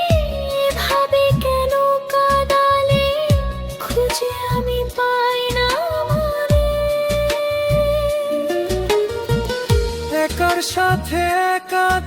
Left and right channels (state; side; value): identical; both; correlation 1.00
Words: ভাবে কেন কাঁদালে, খুঁজে আমি পাই না মনে। একার সাথে একা